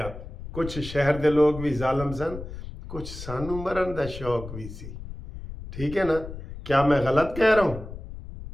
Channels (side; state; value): left; noise; rumble, 11 dB below the sound